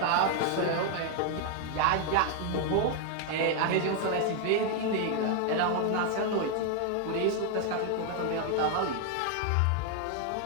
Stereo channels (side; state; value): both; different; correlation 0.00